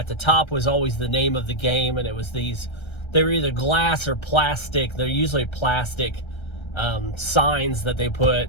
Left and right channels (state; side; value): late; right; 1.3 ms